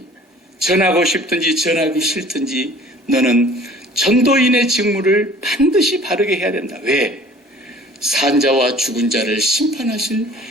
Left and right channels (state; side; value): normal; both; correlation 0.49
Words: 전하고 싶든지 전하기 싫든지 너는 전도인의 직무를 반드시 바르게 해야 된다. 왜? 산자와 죽은 자를 심판하실